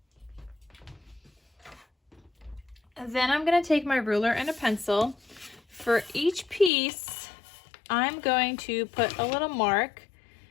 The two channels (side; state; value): right; drops out; at 6.7 s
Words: And then I'm going to take my ruler and a pencil. For each piece, I'm going to put a little mark